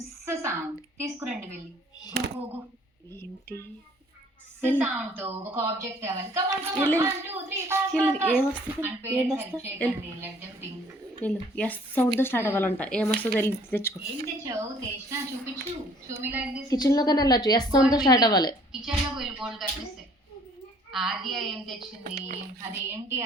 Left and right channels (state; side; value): normal; both; correlation 0.58